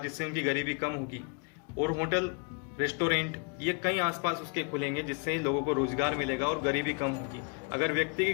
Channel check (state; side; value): quieter; right; 34.3 dB